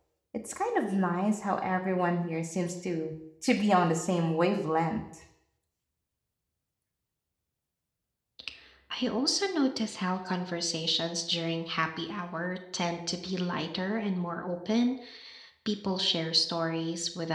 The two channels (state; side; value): identical; both; correlation 1.00